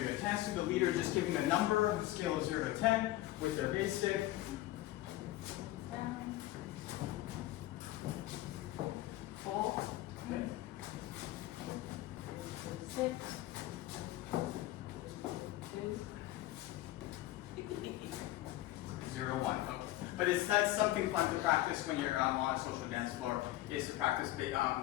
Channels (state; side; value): quieter; right; 15.9 dB